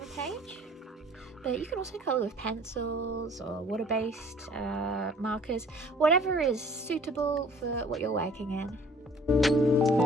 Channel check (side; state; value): both; normal; correlation 0.52